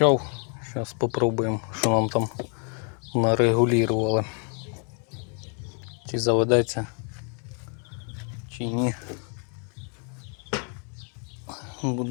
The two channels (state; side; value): quieter; right; 39.5 dB